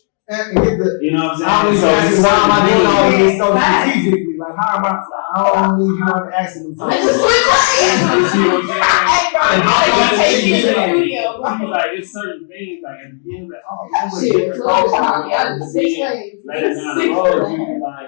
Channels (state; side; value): silent; right; 58 dB below the other